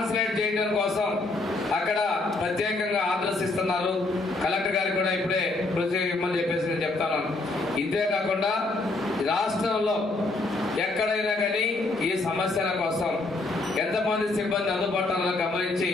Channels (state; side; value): quieter; right; 3.2 dB